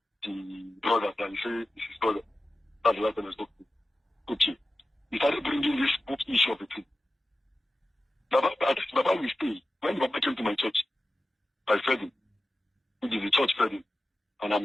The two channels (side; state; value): both; normal; correlation 0.93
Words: the brothers that he said is his brother. That's the last time I spoke to him. Okay. He started bringing this book issue of the thing. Baba will stay. When Baba came to my church, I fed him. Which is the church fed him. And